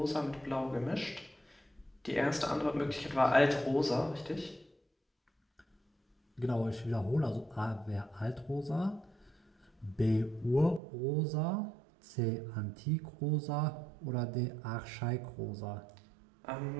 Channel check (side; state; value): left; drops out; at 10.8 s